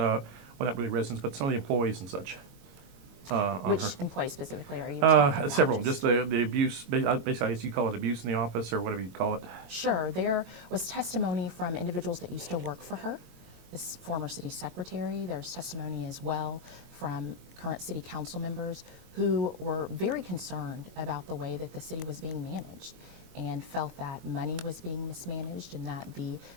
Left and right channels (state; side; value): late; left; 22 ms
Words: not really residents, but some of the employees and such? Which employees specifically are you talking about? Several of them, just the abuse, basically I guess you call it abuse in the office or whatever you call it. Sure, there was testimony from individuals that used to work for her, this former city secretary. There's testimony as well from current city council members who were very concerned about the way that the city was being managed and felt that money was being mismanaged and that the